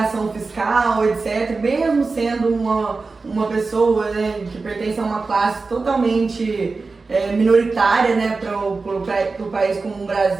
fiscal, etc., mesmo sendo uma pessoa, né, que pertence a uma classe totalmente minoritária, né, para o país como o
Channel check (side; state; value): left; quieter; 4.0 dB